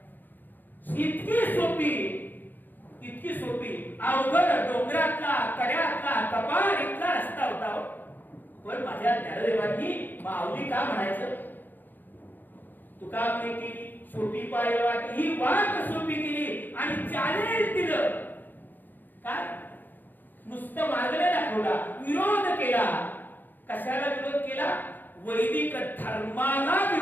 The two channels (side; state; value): right; late; 0.089 ms